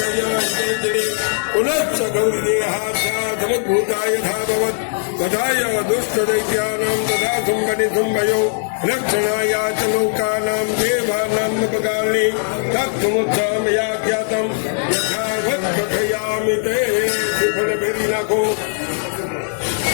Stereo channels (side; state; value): right; silent; 64 dB below the other